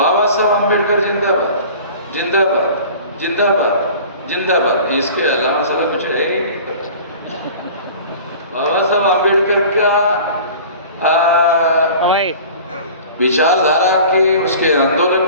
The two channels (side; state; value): both; inverted; correlation -0.42